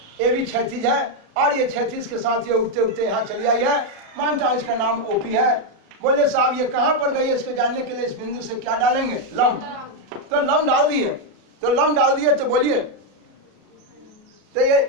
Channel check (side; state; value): left; late; 38 ms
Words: ए बी 36 है, और ये 36 के साथ ये उठते उठते यहाँ चली आई है। मानता हूँ इसका नाम ओपी है। बोले साहब ये कहाँ पर गई है इसको जानने के लिए इस बिंदु से क्या डालेंगे, लंब। तो लंब डाल दिए, तो लंब डाल दिए तो बोलिए तो ये